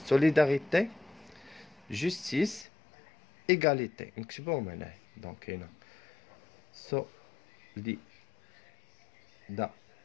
justice, égalité. نكتبوهم هنا. Donc هنا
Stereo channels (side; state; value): right; drops out; at 2.7 s